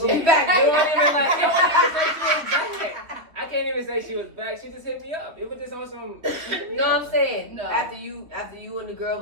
We back. You don't even say she was back. I can't even say she was back. She just hit me up. It was just on some. You know what I'm saying? No. After you and the girl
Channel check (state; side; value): late; left; 3.3 ms